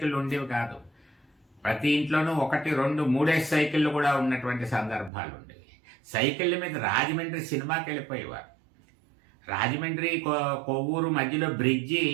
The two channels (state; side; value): drops out; left; at 5.1 s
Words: ఉండేవి కాదు. ప్రతి ఇంట్లోనూ 1, 2, 3 సైకిళ్ళు కూడా ఉన్నటువంటి సందర్భాలు ఉండేవి. సైకిళ్ళ మీద రాజమండ్రి సినిమాకి వెళ్ళిపోయేవారు. రాజమండ్రి కొవ్వూరు మధ్యలో బ్రిడ్జి